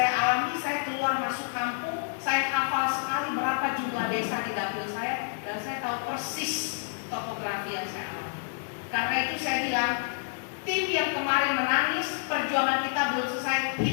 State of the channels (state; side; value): silent; right; digital silence